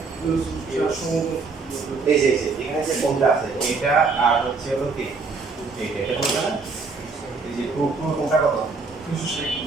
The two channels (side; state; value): left; quieter; 4.4 dB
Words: এই যে এখানে যে কোণটা আছে এটা আর হচ্ছে হলো কি এটা কোণটা না এই যে কোণটা কত